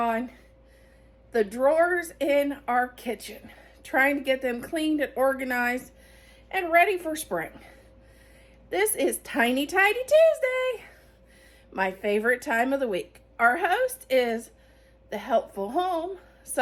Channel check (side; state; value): both; identical; correlation 1.00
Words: the drawers in our kitchen, trying to get them cleaned and organized and ready for spring. This is Tiny Tidy Tuesday, my favorite time of the week. Our host is the Helpful Home,